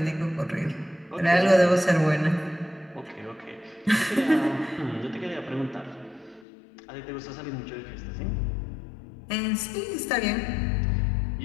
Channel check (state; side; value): drops out; right; at 6.5 s